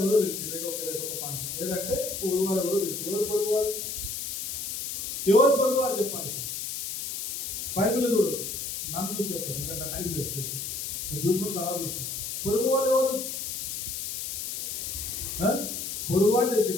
ఎవరో తెలిసింది. రెండొక పాయింట్. లేదంటే పొరుగువాడు ఎవరో తెలిసింది. ఎవరు పొరుగువారు చెప్పాలి. బైబిల్ చూడు, నన్ను చూసి చెప్తాను. ఎందుకంటే టైం లేదు. చూసుకుని తర్వాత చూసుకుని పొరుగువాళ్ళు ఎవరు? పొరుగువాడు తెలిసి.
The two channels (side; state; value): left; noise; hiss, 4 dB below the sound